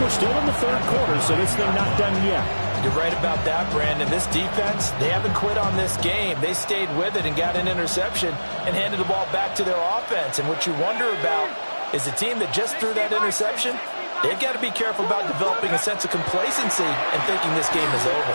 we're still in the third quarter, so this thing not done yet. You're right about that, Brandon. This defense, they haven't quit on this game. They stayed with it and got an interception and handed the ball back to their offense. And what you wonder about is the team that just threw that interception, they've got to be careful about developing a sense of complacency and thinking this game is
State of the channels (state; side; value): inverted; both; correlation -1.00